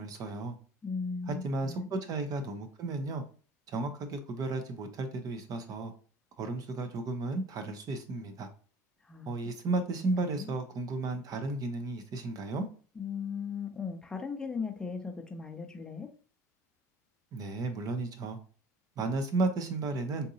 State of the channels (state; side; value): normal; both; correlation 0.51